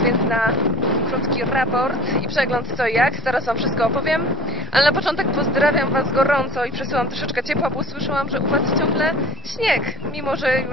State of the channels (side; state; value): both; normal; correlation 0.40